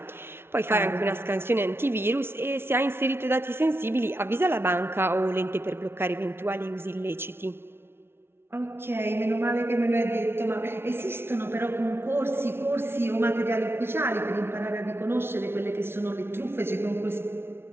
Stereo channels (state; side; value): late; left; 0.12 ms